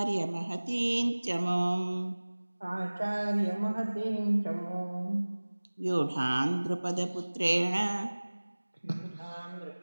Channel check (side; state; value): both; inverted; correlation -1.00